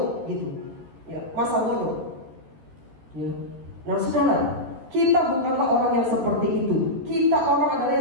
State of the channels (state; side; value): late; left; 13 ms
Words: gitu. Ya, masa bodoh. Ya. Nah, saudara, kita bukanlah orang yang seperti itu. Kita orang adalah